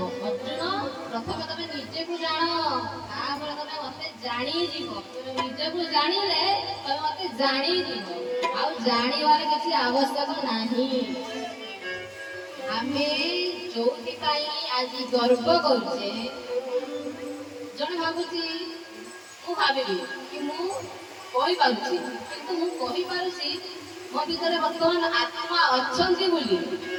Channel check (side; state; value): both; identical; correlation 1.00